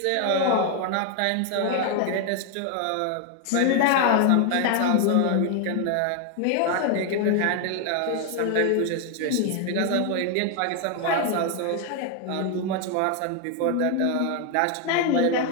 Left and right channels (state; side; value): different; both; correlation 0.01